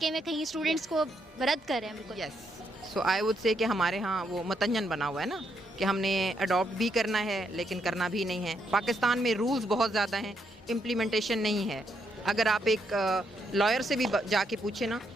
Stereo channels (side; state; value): both; normal; correlation 0.77